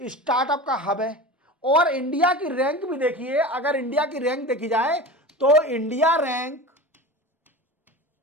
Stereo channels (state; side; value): normal; both; correlation 0.31